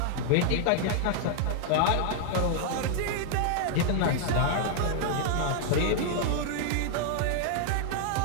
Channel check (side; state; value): both; different; correlation 0.00